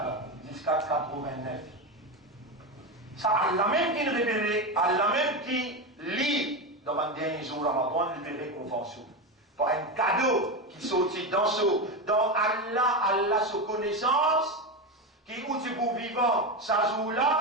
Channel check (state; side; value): normal; both; correlation 0.16